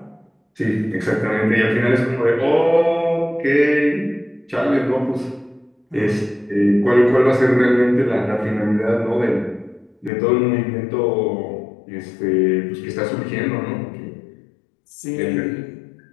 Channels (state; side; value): drops out; right; at 10.1 s